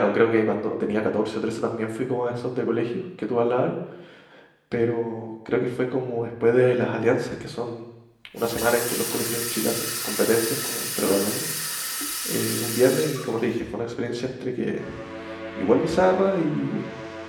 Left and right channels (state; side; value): identical; both; correlation 1.00